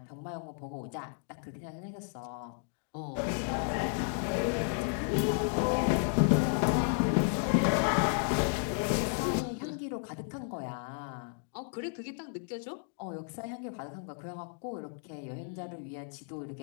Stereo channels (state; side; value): silent; right; 56 dB below the other